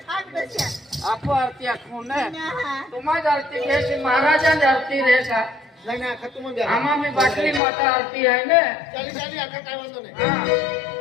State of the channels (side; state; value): right; drops out; at 7.6 s